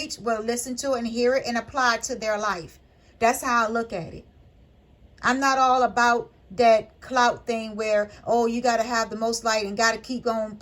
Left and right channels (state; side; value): identical; both; correlation 1.00